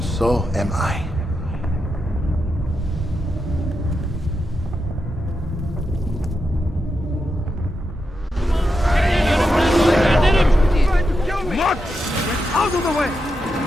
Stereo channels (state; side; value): normal; both; correlation 0.86